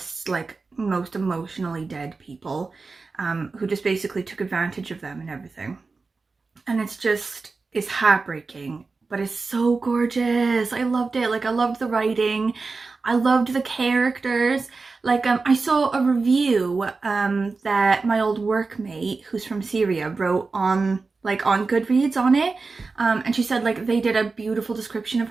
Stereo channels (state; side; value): quieter; left; 4.1 dB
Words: like most emotionally dead people, who just basically took advantage of them and everything. And it's heartbreaking, but it's so gorgeous. I loved it. Like, I loved the writing. I loved the characters. Like, I saw a review that my old workmate, who's from Syria, wrote on Goodreads on it, and she said like they did a beautiful description of